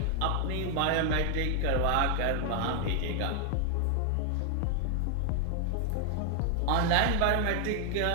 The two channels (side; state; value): both; different; correlation 0.00